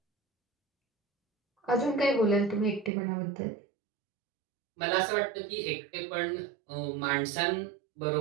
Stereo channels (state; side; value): drops out; left; at 2.9 s